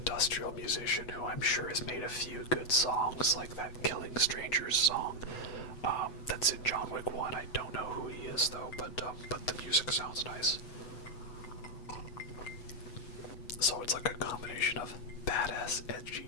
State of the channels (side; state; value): right; late; 8.1 ms